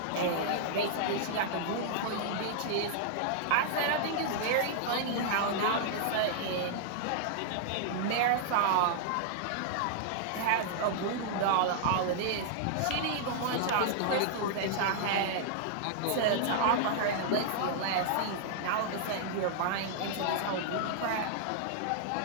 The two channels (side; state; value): both; different; correlation -0.01